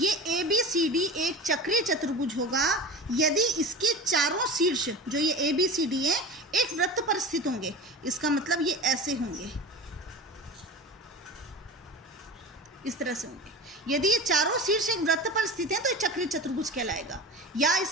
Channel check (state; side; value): normal; both; correlation 0.31